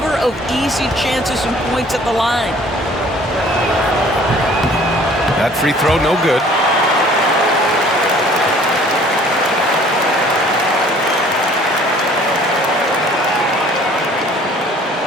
of easy chances and points at the line. That free throw, no good.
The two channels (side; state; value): both; normal; correlation 0.54